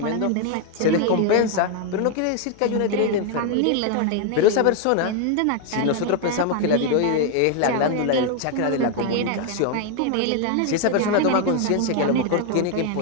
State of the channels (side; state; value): both; different; correlation 0.01